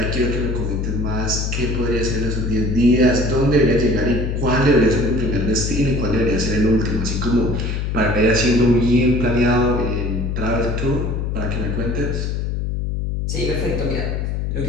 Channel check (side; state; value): left; noise; hum, 1 dB below the sound